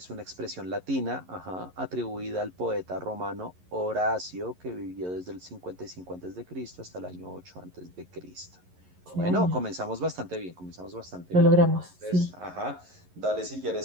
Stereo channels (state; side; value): late; left; 11 ms